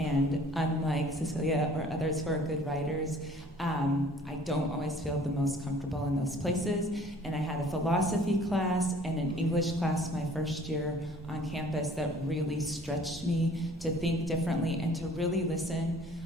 unlike Cecilia or others who are good writers, I don't always feel the most comfortable in those places. And I had a philosophy class and an English class my first year on campus that really stretched me to think differently and to really listen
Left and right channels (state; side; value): normal; both; correlation 0.52